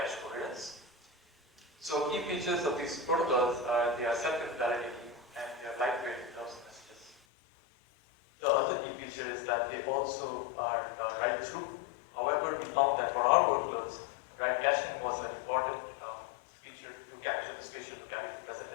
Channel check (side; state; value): right; drops out; at 7.2 s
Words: coherence. So key features of these protocols are they are self-invalidating and they are lightweight without messages. The other key feature is that they also are write-through. However, we found that for our workloads, write caching was an important feature to capture the spatial locality present